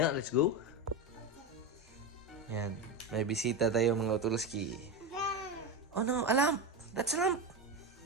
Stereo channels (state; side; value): normal; both; correlation 0.17